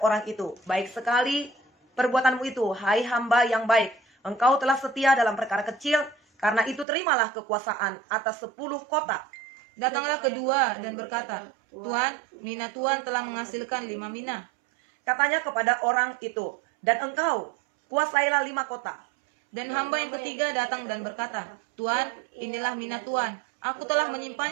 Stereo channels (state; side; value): drops out; left; at 6.9 s